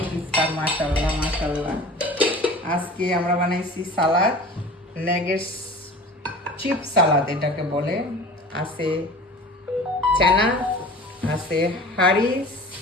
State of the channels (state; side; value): normal; both; correlation 0.40